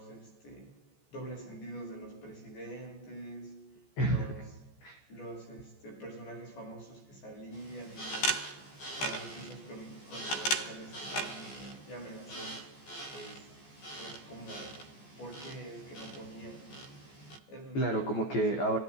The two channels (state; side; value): late; right; 14 ms